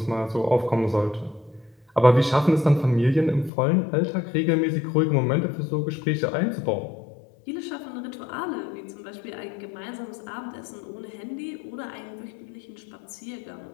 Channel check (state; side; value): drops out; right; at 3.5 s